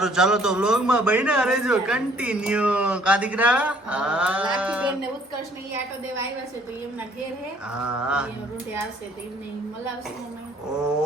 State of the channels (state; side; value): normal; both; correlation 0.60